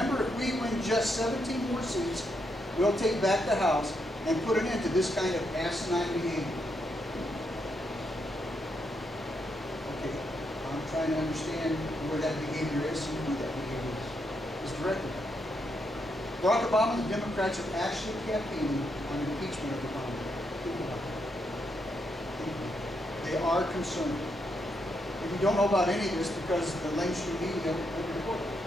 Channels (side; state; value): both; normal; correlation 0.80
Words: if we win just 17 more seats, we'll take back the House and put an end to this kind of asinine behavior. Okay, I'm trying to understand where that behavior is and who that behavior is directed at. Barack Obama and the Democrats are actually campaigning on impeachment of Obama. They are concerned. If you don't know about any of this because the mainstream media won't report it.